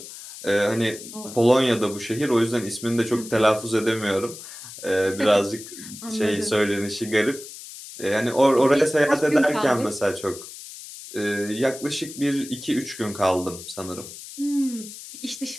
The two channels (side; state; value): left; noise; hiss, 14 dB below the sound